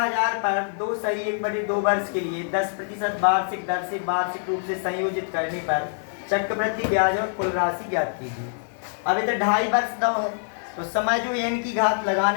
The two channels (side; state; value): right; silent; digital silence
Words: पर 2 सही 1/2 वर्ष के लिए 10% वार्षिक दर से वार्षिक रूप से संयोजित करने पर चक्रवृद्धि ब्याज और कुल राशि ज्ञात कीजिए। अब इधर 2.5 वर्ष दो है तो समय जो n की घात